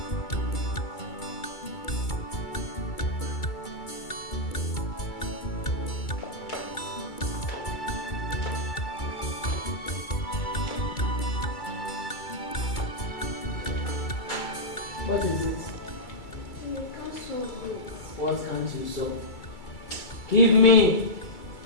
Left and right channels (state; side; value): late; right; 2.3 ms